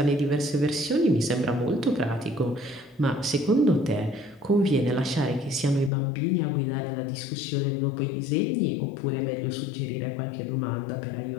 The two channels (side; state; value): right; drops out; at 5.9 s